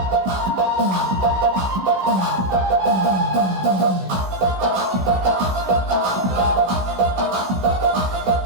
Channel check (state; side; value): late; left; 16 ms